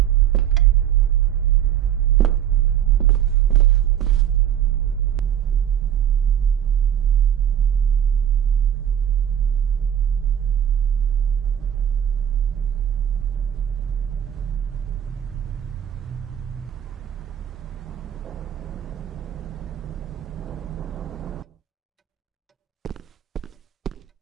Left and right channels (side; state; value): left; quieter; 9.9 dB